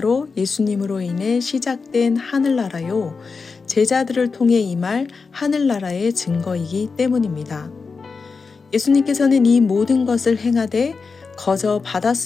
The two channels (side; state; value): right; quieter; 4.7 dB